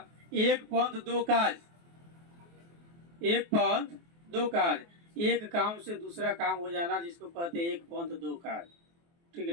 एक पंथ दो काज। एक पंथ दो काज, एक काम से दूसरा काम हो जाना जिसको कहते हैं एक पंथ दो काज। ठीक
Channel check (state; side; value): late; left; 24 ms